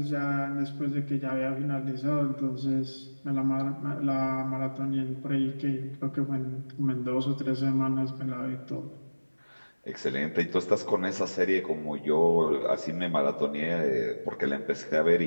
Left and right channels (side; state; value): both; inverted; correlation -1.00